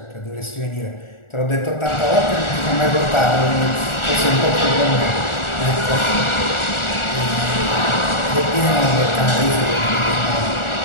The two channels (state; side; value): late; right; 1.4 ms